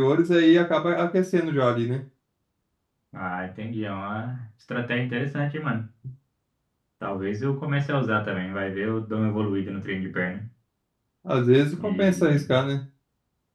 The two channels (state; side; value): identical; both; correlation 1.00